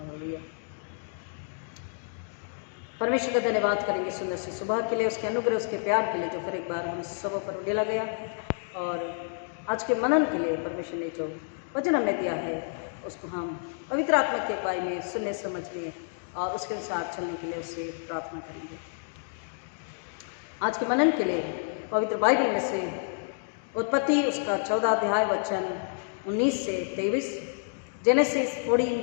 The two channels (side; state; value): right; silent; digital silence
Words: परमेश्वर का धन्यवाद करेंगे सुंदर सी सुबह के लिए, उसके अनुग्रह, उसके प्यार के लिए जो फिर एक बार हम सब पर उड़ेला गया, और आज के मनन के लिए परमेश्वर ने जो वचन हमें दिया है उसको हम पवित्र आत्मा की अगुवाई में सुनने समझने और उसके अनुसार चलने के लिए उससे प्रार्थना करेंगे। आज के मनन के लिए पवित्र बाइबल में से उत्पत्ति उसका 14 अध्याय वचन 19 से 23, जेनेसिस